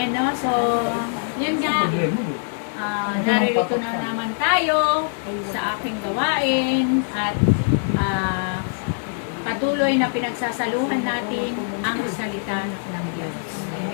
no? So, yun nga. Naririto na naman tayo sa aking gawain at patuloy na pinagsasaluhan natin ang salita ng Diyos.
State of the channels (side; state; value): right; silent; digital silence